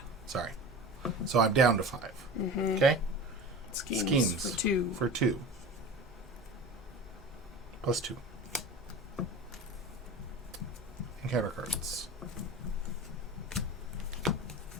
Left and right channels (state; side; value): normal; both; correlation 0.34